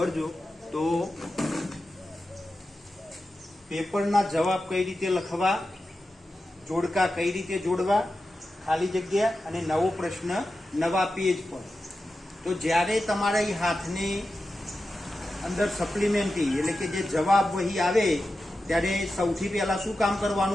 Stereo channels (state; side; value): normal; both; correlation 0.92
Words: તો પેપરના જવાબ કઈ રીતે લખવા, જોડકા કઈ રીતે જોડવા, ખાલી જગ્યા અને નવો પ્રશ્ન નવા પેજ પર। તો જ્યારે તમારા હાથની અંદર સપ્લિમેન્ટરી એટલે કે જે જવાબ વહી આવે ત્યારે સૌથી પહેલા શું કામ